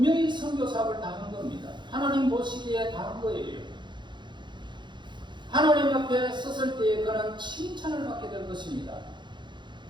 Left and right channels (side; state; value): left; late; 0.22 ms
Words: 선교 사업을 다 한 겁니다. 하나님 보시기에 다 한 거예요. 하나님 앞에 섰을 때에 그는 칭찬을 받게 될 것입니다.